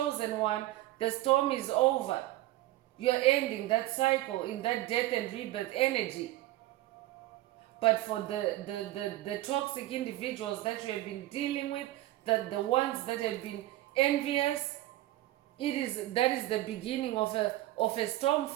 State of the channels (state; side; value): quieter; left; 16.2 dB